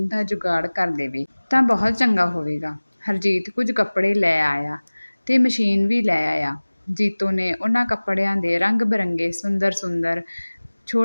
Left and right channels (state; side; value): inverted; both; correlation -1.00